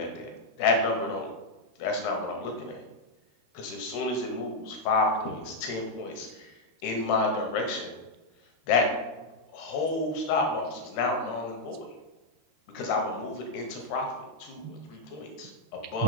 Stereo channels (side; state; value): right; late; 13 ms